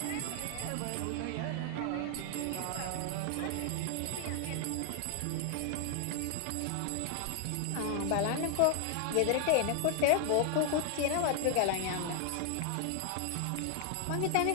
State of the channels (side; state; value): both; different; correlation 0.00